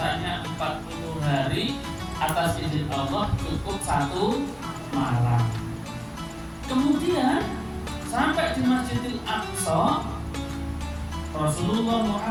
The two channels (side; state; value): both; identical; correlation 1.00